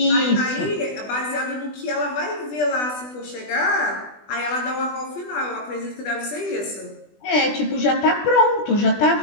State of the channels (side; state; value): right; late; 20 ms